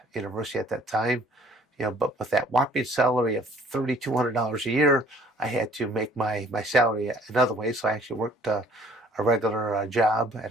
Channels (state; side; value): normal; both; correlation 0.56